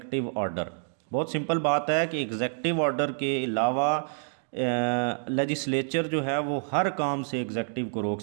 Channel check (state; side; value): silent; left; digital silence